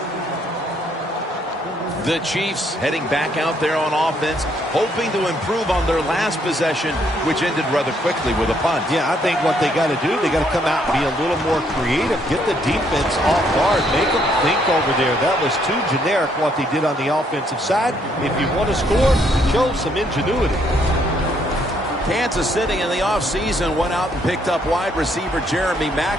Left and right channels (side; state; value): both; normal; correlation 0.70